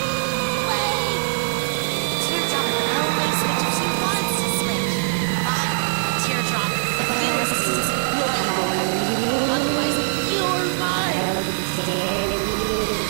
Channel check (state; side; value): silent; left; digital silence